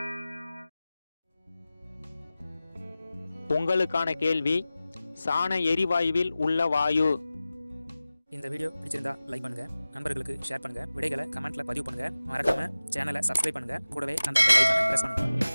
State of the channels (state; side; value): inverted; both; correlation -0.97